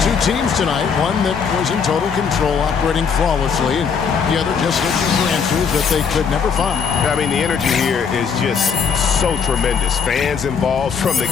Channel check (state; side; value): quieter; right; 6.3 dB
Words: two teams tonight, one that was in total control, operating flawlessly, and the other just looking for answers that they could never find. I mean, the energy here is just so tremendous. Fans involved from the